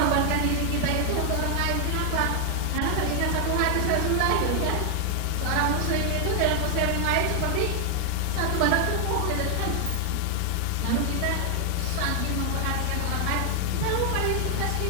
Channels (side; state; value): both; different; correlation 0.00